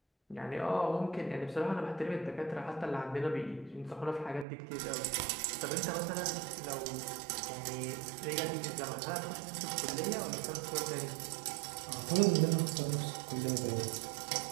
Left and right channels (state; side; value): drops out; left; at 4.5 s